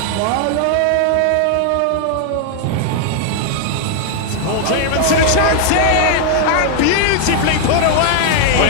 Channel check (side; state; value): both; different; correlation 0.00